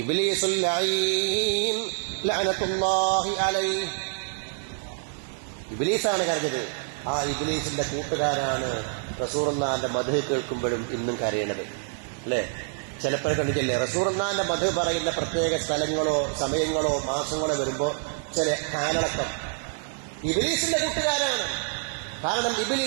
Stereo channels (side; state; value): left; silent; digital silence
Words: ഇബ്ലീസുൽ ലഈൻ ലഅനത്തുല്ലാഹി അലൈഹി. ഇബ്ലീസാണ് കരഞ്ഞത്. ആ ഇബ്ലീസിന്റെ കൂട്ടുകാരാണ് റസൂലുള്ളാഹിന്റെ മദ്ഹ് കേൾക്കുമ്പോഴും ഇന്നും കരയണത്. അല്ലേ? ചിലപ്പോൾ കണ്ടിട്ടില്ലേ, റസൂലുള്ളാഹിന്റെ മദ്ഹ് പറയുന്ന പ്രത്യേക സ്ഥലങ്ങളോ സമയങ്ങളോ മാസങ്ങളോ വരുമ്പോ ചില ഹാലടക്കം ഇബ്ലീസിന്റെ കൂട്ടുകാരാണ്. കാരണം